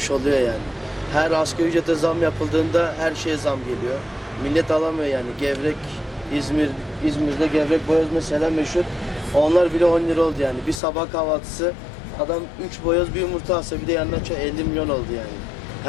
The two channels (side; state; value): right; drops out; at 10.8 s